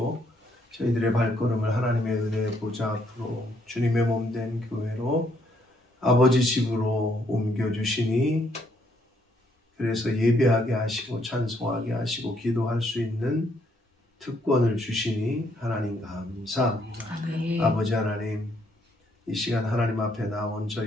저희들의 발걸음을 하나님의 은혜의 보좌 앞으로 주님의 몸된 교회로 아버지 집으로 옮겨주시니, 그래서 예배하게 하시고 찬송하게 하시고 기도할 수 있는 특권을 주시니 하나님 감사합니다. 아멘. 아버지 하나님, 이 시간 하나님 앞에 나온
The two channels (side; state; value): both; normal; correlation 0.71